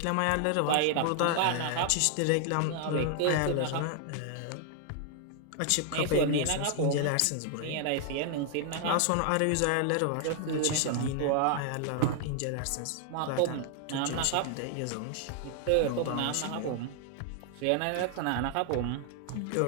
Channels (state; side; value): different; both; correlation 0.00